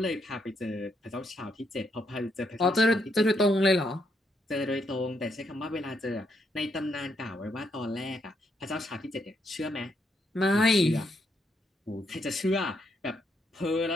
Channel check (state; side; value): normal; both; correlation 0.76